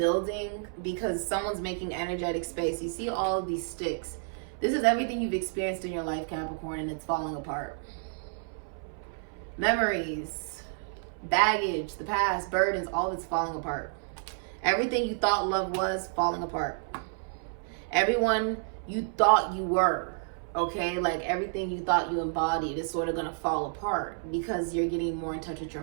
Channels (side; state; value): left; silent; 58 dB below the other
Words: because someone's making energetic space. You see all of these sticks. This is everything you've experienced in your life, Capricorn, and it's falling apart. Memories, baggage, the past, burdens, all of it's falling apart. Everything you thought love was, falling apart. Everyone you thought you were, okay? Like everything you thought you embodied is sort of going to fall apart because you're getting more in touch with your